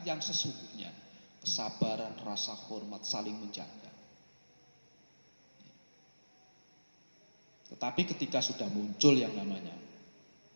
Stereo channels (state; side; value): inverted; both; correlation -1.00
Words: yang sesungguhnya. Kesabaran, rasa hormat, saling menjaga. Tetapi ketika sudah muncul yang namanya